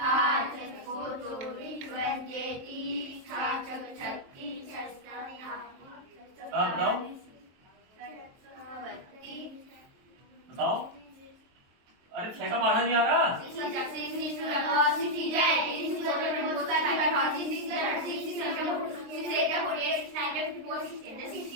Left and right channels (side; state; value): left; late; 23 ms